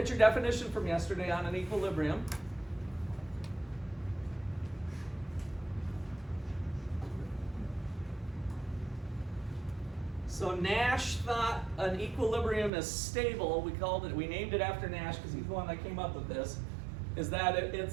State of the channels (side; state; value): left; drops out; at 12.7 s